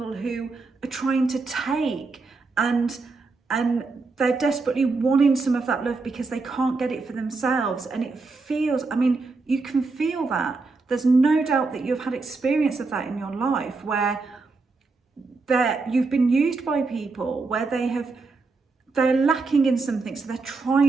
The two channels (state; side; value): quieter; left; 3.9 dB